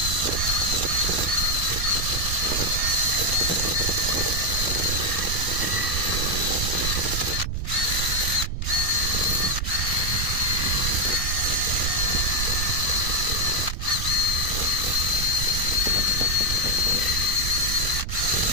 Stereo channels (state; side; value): noise; right; rumble, 2 dB below the sound